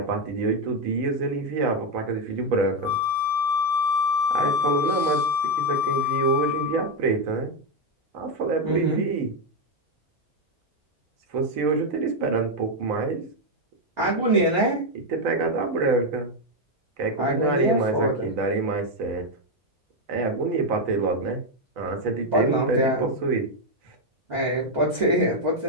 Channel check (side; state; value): both; normal; correlation 0.05